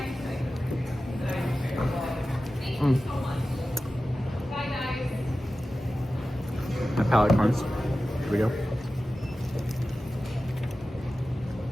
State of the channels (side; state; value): both; normal; correlation 0.95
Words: My palate cleanse. Here we go.